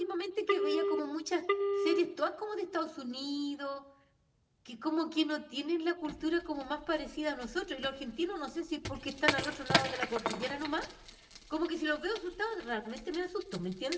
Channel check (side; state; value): both; identical; correlation 1.00